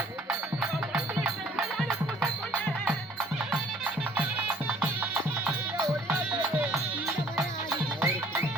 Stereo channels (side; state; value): both; normal; correlation 0.56